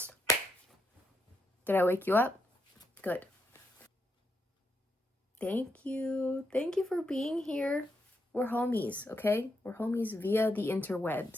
Did I wake you up? Good. Thank you. Thank you for being here. We're homies, okay? We're homies via the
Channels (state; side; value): normal; both; correlation 0.81